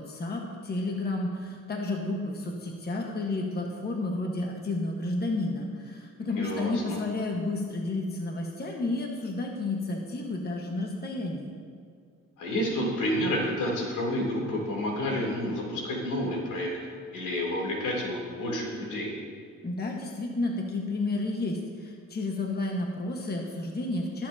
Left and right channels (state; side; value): normal; both; correlation 0.50